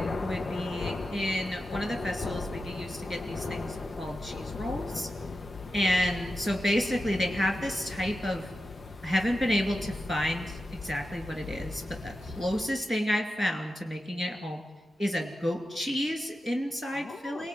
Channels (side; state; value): both; normal; correlation 0.91